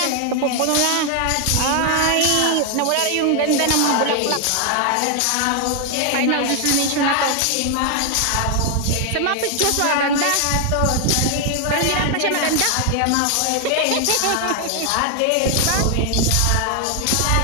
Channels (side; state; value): both; different; correlation 0.00